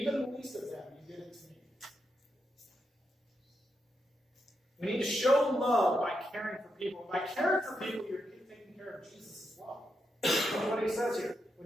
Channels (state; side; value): normal; both; correlation 0.84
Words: the least of them, you did it to me. We need to show love by caring for people. By caring for people, you're taking care of Jesus as well. That's what he says here.